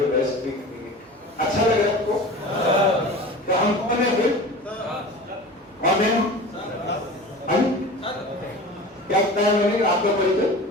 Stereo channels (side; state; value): both; normal; correlation 0.36